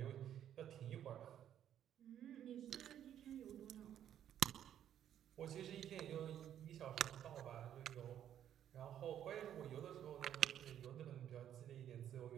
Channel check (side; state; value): left; quieter; 10.4 dB